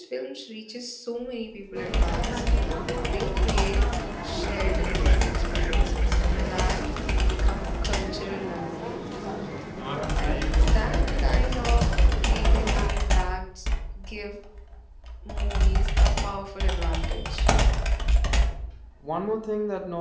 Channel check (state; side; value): identical; both; correlation 1.00